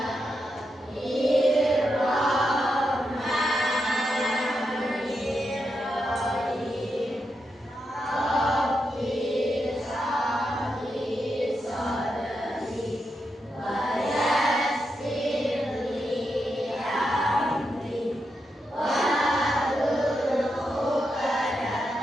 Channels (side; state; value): both; normal; correlation 0.85